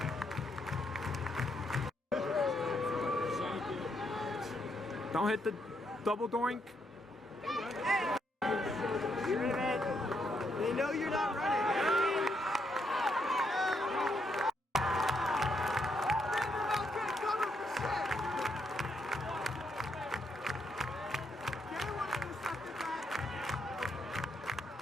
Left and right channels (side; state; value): both; normal; correlation 0.77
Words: Don't hit the double doink. They know you're not running.